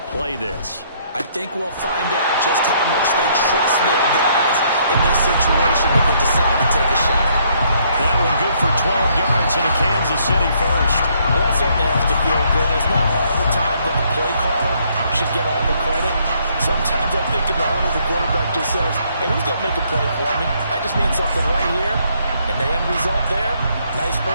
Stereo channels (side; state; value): both; inverted; correlation -0.68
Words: play this. I think we'll find out just how much they trust their guys in this situation if they decide to take a shot. That one good for 12 yards into Kansas City first. Well, that certainly has to feel good. It's not all the time that the play caller should get all the credit. Sometimes I think in the huddle, the quarterback just says, hey, who's going to make a play for me? I just need something right here. And the end result there, Nice